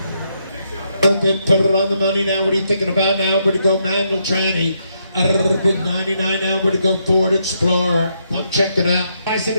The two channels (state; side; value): inverted; both; correlation -0.78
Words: Put it on the money now. What are you thinking about now? Where to go manual tranny? Big 99 now. Where to go Ford Explorer? Come check it out.